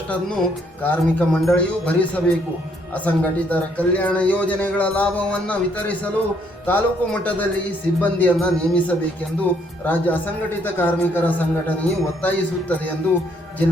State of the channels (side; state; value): both; normal; correlation 0.69